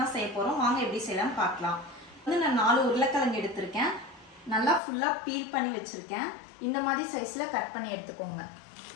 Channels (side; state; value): right; drops out; at 4.8 s